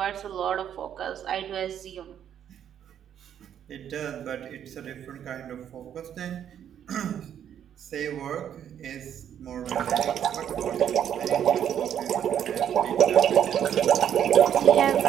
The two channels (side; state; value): left; quieter; 9.5 dB